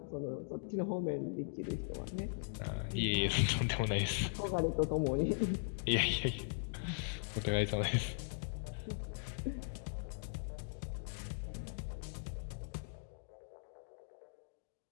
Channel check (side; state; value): right; silent; digital silence